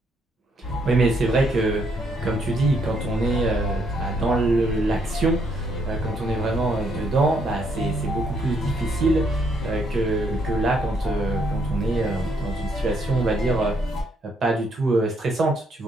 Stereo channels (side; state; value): both; normal; correlation 0.72